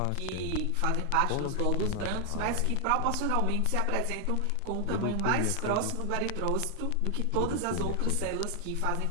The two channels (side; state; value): both; different; correlation 0.00